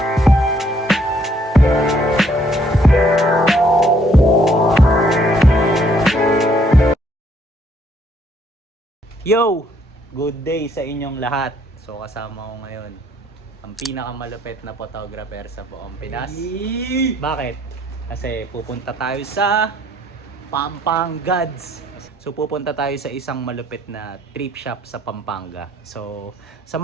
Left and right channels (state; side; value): normal; both; correlation 0.66